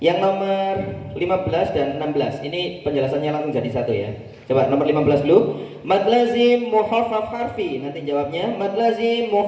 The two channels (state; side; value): identical; both; correlation 1.00